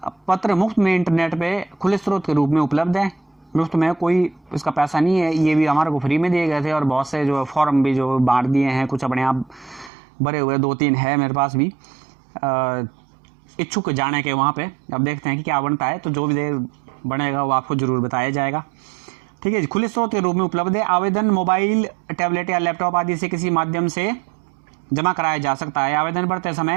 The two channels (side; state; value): left; drops out; at 9.9 s